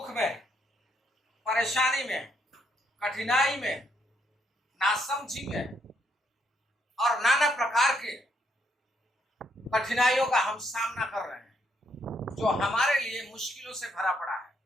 में, परेशानी में, कठिनाई में, नासमझी में और नाना प्रकार के कठिनाइयों का हम सामना कर रहे हैं जो हमारे लिए मुश्किलों से भरा पड़ा है।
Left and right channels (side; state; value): both; normal; correlation 0.74